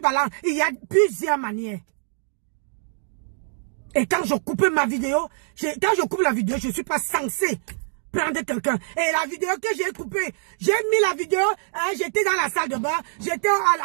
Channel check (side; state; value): left; silent; 62 dB below the other